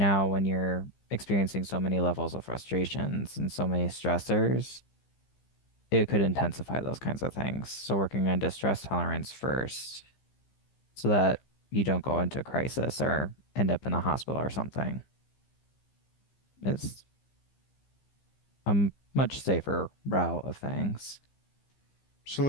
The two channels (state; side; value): late; right; 15 ms